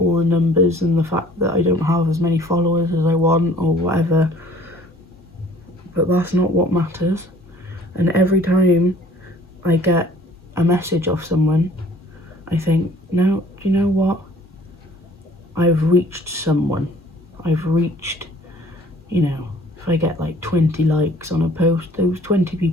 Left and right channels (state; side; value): normal; both; correlation 0.53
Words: the numbers and the fact that I don't have as many followers as I want or whatever, but that's not what matters. And every time I get a message off someone, I think, no, do you know what? I've reached someone. I've reached, you know, if I get like 20 likes on a post, those 20